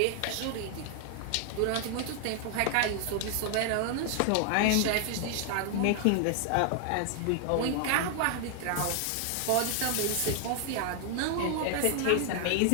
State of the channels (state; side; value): different; both; correlation 0.00